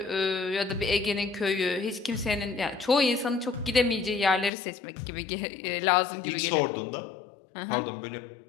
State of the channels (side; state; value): right; drops out; at 4.5 s